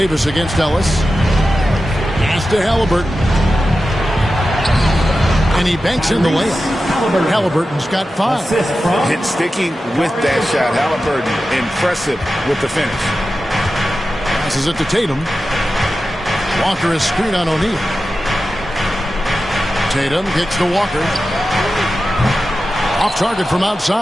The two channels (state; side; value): normal; both; correlation 0.93